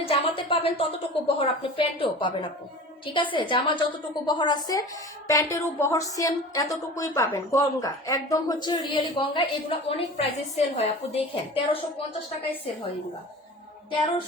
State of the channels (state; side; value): normal; both; correlation 0.37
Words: জামাতে পাবেন ততটুকু বহর আপনি প্যান্টেও পাবেন আপু, ঠিক আছে? জামা যতটুকু বহর আছে প্যান্টেরও বহর সেম এতটুকুই পাবেন। গঙ্গা একদম হচ্ছে রিয়েলি গঙ্গা, এগুলো অনেক প্রাইসে সেল হয় আপু, দেখেন 1350 টাকায় সেল হয় এগুলা,